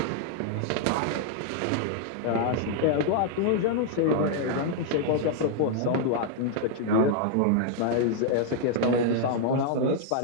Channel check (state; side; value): different; both; correlation -0.01